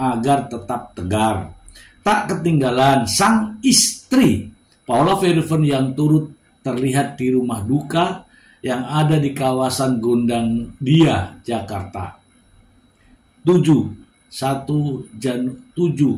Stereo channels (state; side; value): identical; both; correlation 1.00